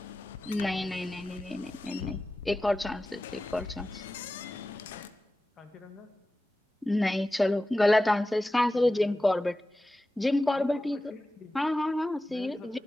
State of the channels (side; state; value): both; normal; correlation 0.95